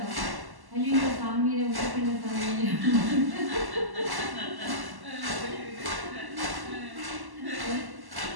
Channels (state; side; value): late; left; 1.1 ms